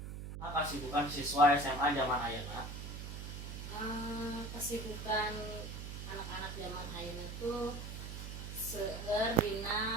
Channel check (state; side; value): noise; right; hum, 8 dB below the sound